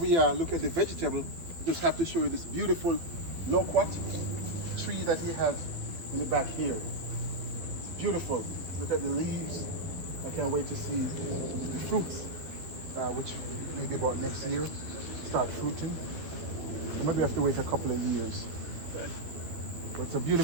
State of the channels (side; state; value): left; late; 12 ms